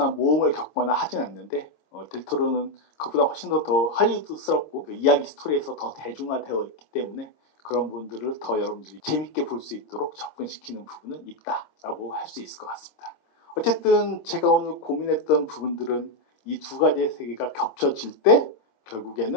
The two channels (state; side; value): late; right; 26 ms